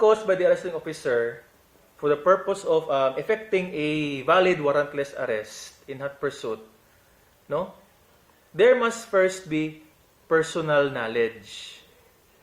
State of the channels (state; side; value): identical; both; correlation 1.00